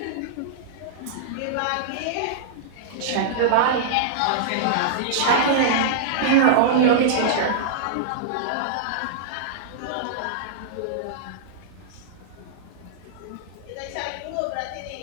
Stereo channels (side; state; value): both; different; correlation -0.02